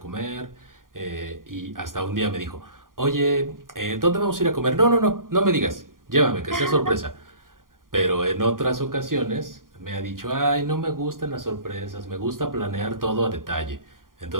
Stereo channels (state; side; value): late; left; 0.90 ms